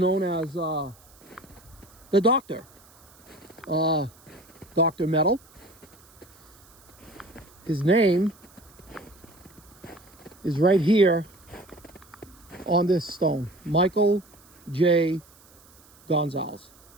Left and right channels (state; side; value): noise; right; hiss, 27 dB below the sound